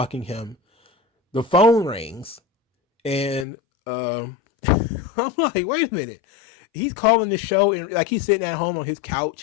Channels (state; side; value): drops out; right; at 3.5 s